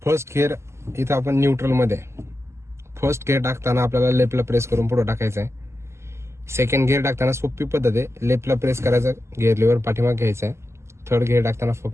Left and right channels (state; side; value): late; left; 0.13 ms